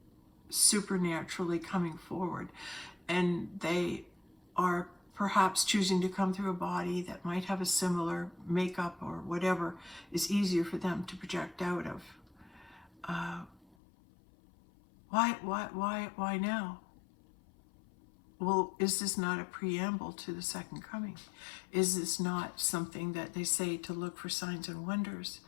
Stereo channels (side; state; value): right; drops out; at 13.8 s